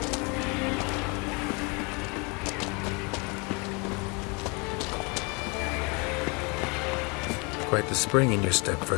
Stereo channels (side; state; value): right; quieter; 30.3 dB